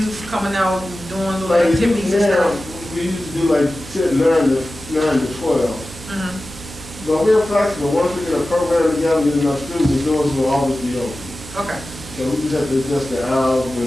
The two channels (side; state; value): right; noise; hum, 16 dB below the sound